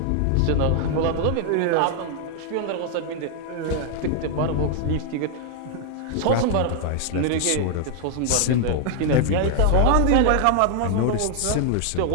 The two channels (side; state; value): both; different; correlation 0.00